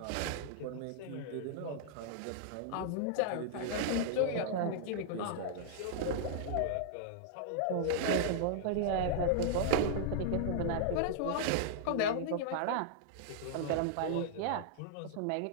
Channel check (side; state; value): both; different; correlation -0.01